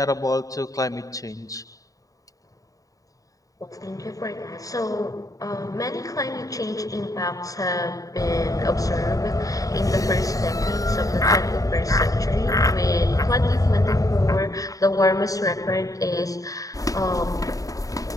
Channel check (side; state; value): right; late; 0.17 ms